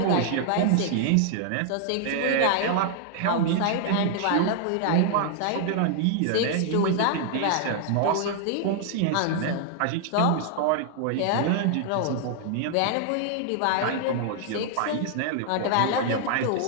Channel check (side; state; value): both; different; correlation 0.00